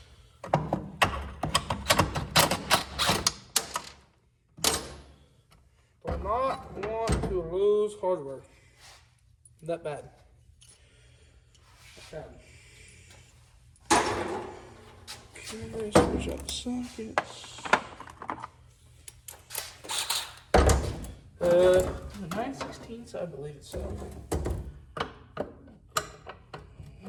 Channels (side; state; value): both; identical; correlation 1.00